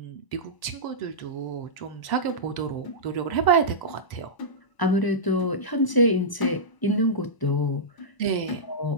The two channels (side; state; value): right; late; 1.0 ms